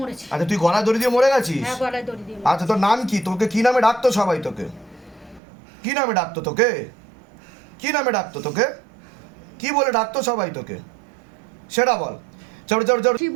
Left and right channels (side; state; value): left; drops out; at 5.4 s